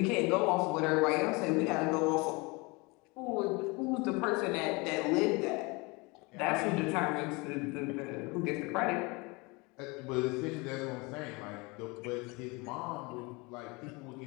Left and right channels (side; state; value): right; quieter; 26.7 dB